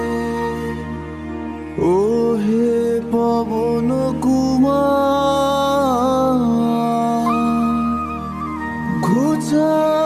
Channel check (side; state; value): both; identical; correlation 1.00